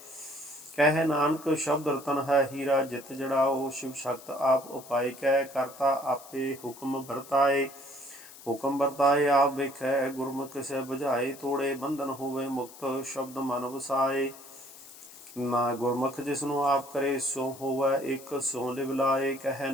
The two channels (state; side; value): noise; left; hiss, 18 dB below the sound